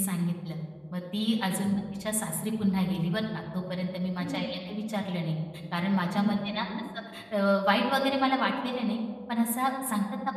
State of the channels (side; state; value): both; identical; correlation 1.00